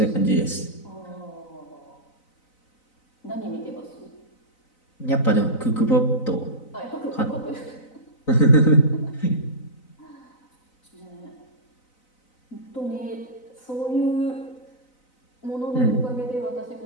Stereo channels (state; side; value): late; right; 4.0 ms